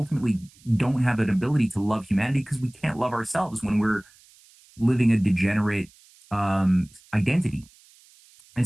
don't have an ability to love humanity, because we can't love ourselves when we're living a degenerate identity. And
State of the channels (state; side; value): noise; right; hiss, 28 dB below the sound